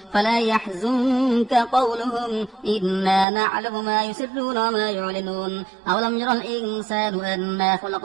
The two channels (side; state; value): left; drops out; at 3.2 s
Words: فلا يحزنك قولهم إنا نعلم ما يسرون وما يعلنون أولم يرى الإنسان أنا